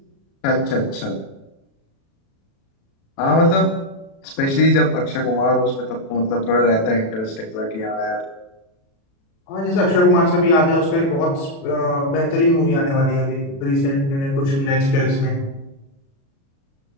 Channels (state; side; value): late; right; 36 ms